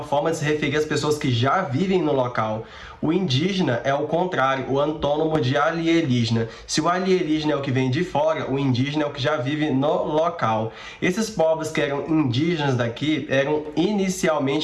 forma de se referir às pessoas que já vivem no local. O indígena é o contrário, o antônimo de alienígena. Se o alienígena é o que vem de fora, o indígena é o que já vive no local. Esses povos que eram indígenas daqui eram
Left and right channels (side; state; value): both; identical; correlation 1.00